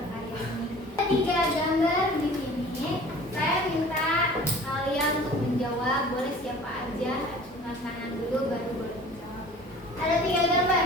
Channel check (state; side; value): normal; both; correlation 0.45